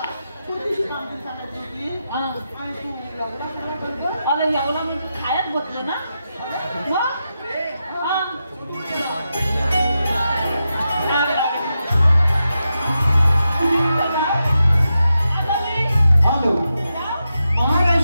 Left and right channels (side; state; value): both; inverted; correlation -0.88